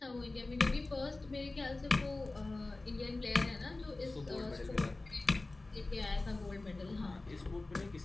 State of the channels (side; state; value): right; quieter; 3.1 dB